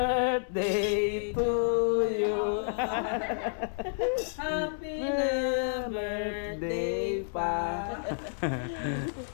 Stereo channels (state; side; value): silent; right; 58 dB below the other